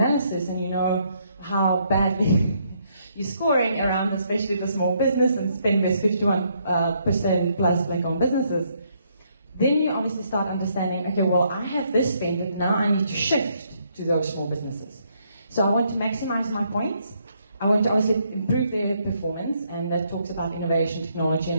and you know how badly you're scoring around, especially the small business and spend with 51% plus black-owned businesses, then you obviously start understanding, okay, well, I have this spend, but now I need to shift to those small businesses. So I want to maximize my points. I want to obviously improve their performance, and that talks about innovation, technology,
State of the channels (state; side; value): inverted; both; correlation -0.72